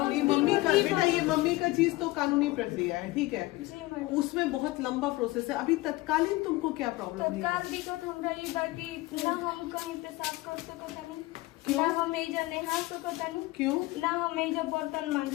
ये मम्मी का बेटा, ये मम्मी का चीज तो कानूनी प्रक्रिया है, ठीक है। जी मैडम। उसमें बहुत लंबा प्रोसेस है। अभी तत्कालीन तुमको क्या प्रॉब्लम है? तत्काल दिक्कत हमरा ये बाकी ना हम कहीं पेशाब कर सकतानी, क्यों? ना हम एजा नहा सकतानी, क्यों? ना हम एजा बर्तन मान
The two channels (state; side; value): quieter; right; 19.9 dB